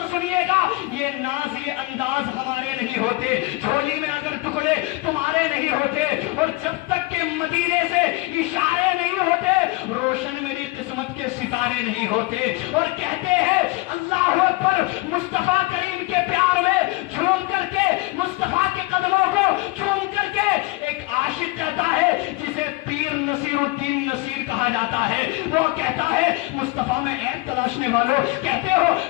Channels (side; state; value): right; quieter; 21.8 dB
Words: سنیے گا, یہ ناز یہ انداز ہمارے نہیں ہوتے, جھولی میں اگر ٹکڑے تمہارے نہیں ہوتے, اور جب تک کہ مدینے سے اشارے نہیں ہوتے روشن میری قسمت کے ستارے نہیں ہوتے. اور کہتے ہیں اللہ اکبر, مصطفیٰ کریم کے پیار میں جھوم کر کے, مصطفیٰ کے قدموں کو جھوم کر کے ایک عاشق کہتا ہے جسے پیر نصیر الدین نصیر کہا جاتا ہے, وہ کہتا ہے مصطفیٰ میں عیب تلاشنے والوں, کہتے ہو